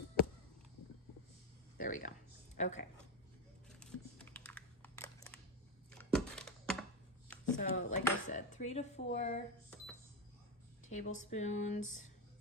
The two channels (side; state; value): both; normal; correlation 0.10